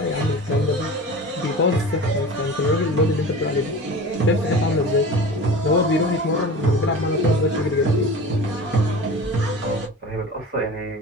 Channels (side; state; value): both; normal; correlation 0.35